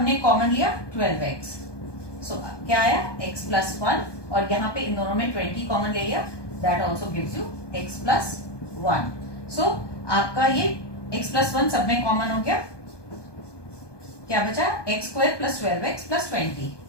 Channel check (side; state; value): right; late; 1.2 ms